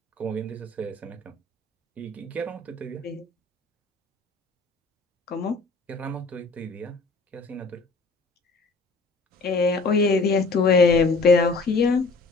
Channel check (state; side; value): quieter; right; 3.7 dB